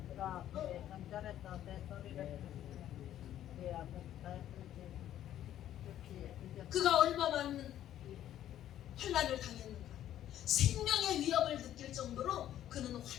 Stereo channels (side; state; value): right; quieter; 11.8 dB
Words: 그가 얼마만 환난을 당했는가? 생명의 위협을 느낄 정도로 그는